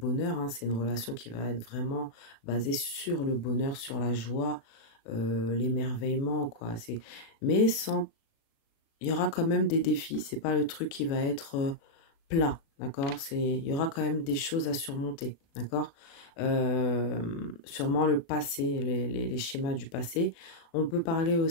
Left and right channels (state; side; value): late; right; 36 ms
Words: hein, c'est une relation qui va être vraiment basée sur le bonheur, sur la joie, l'émerveillement, quoi. Mais sans, il y aura quand même des défis. C'est pas le truc qui va être plat, d'accord? Il y aura quand même des choses à surmonter, d'accord? Sûrement le passé, les schémas du passé. On peut parler